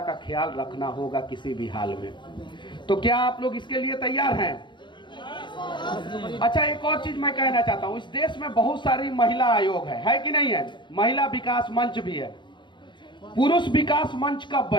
ख्याल रखना होगा किसी भी हाल में। तो क्या आप लोग इसके लिए तैयार हैं? अच्छा, एक और चीज मैं कहना चाहता हूं। इस देश में बहुत सारी महिला आयोग है कि नहीं है? महिला विकास मंच भी है। पुरुष विकास मंच कब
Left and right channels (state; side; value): late; right; 0.23 ms